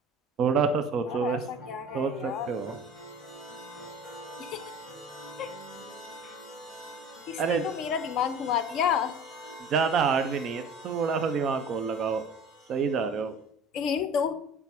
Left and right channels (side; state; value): both; normal; correlation 0.42